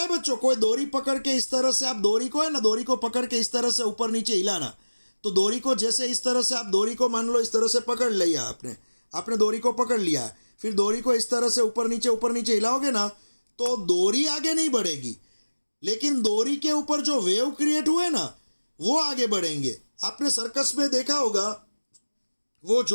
है बच्चों? कोई डोरी पकड़ के इस तरह से, आप डोरी को है ना, डोरी को पकड़ के इस तरह से ऊपर नीचे हिलाना, तो डोरी को जैसे इस तरह से, आप डोरी को मान लो इस तरह से पकड़ लिया आपने डोरी को पकड़ लिया, फिर डोरी को इस तरह से ऊपर नीचे हिलाओगे ना, तो डोरी आगे नहीं बढ़ेगी, लेकिन डोरी के ऊपर जो वेव क्रिएट हुए ना वो आगे बढ़ेंगे। आपने सर्कस में देखा होगा, वो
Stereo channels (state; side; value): inverted; both; correlation -1.00